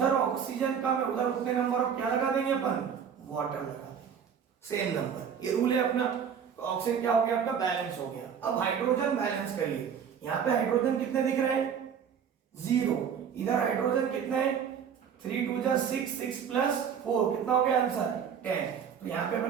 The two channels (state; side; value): quieter; left; 7.6 dB